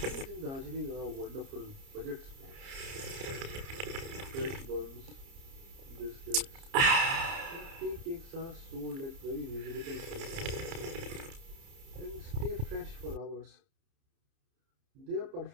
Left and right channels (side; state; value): left; late; 30 ms